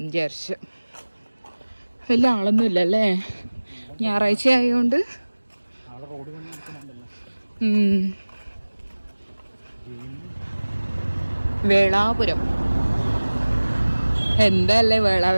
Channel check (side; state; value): both; inverted; correlation -1.00